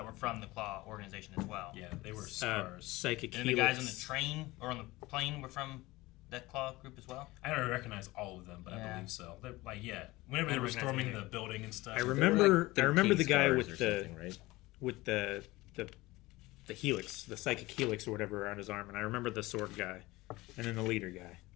were from the Claw organization as well. Yeah, they were scars. Psychic And the Helix. guys on the train or on the plane were from that Claw group as well. I don't recognize all of them, but I Yeah. believe so. They're, like, yeah, whenever I they don't were recognize storming either. the building and stuff. I They were remember. like I remember 13 the guy stars with or the something, right? with the helix, the psychic helix or whatever around his arm, and I remember the sword guy, and then the leader guy,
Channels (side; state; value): right; quieter; 20.0 dB